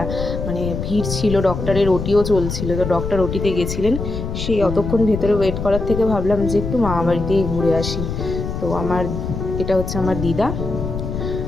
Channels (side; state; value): left; noise; rumble, 5 dB below the sound